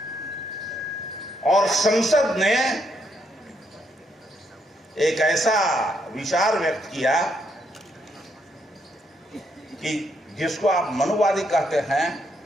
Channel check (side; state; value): both; normal; correlation 0.75